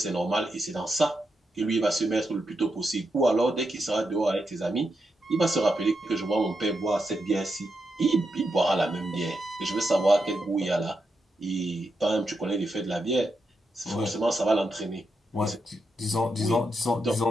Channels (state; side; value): normal; both; correlation 0.84